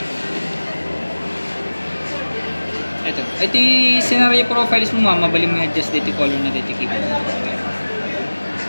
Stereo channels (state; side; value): inverted; both; correlation -1.00